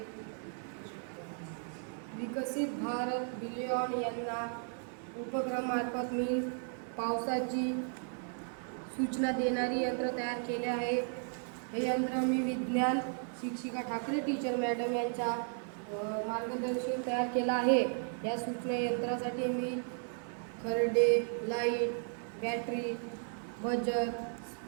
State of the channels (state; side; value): silent; left; 54 dB below the other